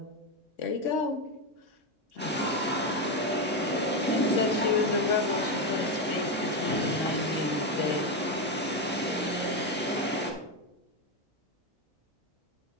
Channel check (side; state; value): both; normal; correlation 0.10